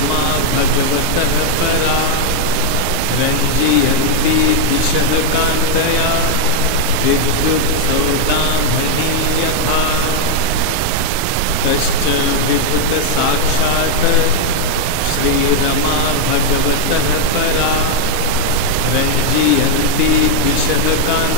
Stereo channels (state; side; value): different; both; correlation 0.01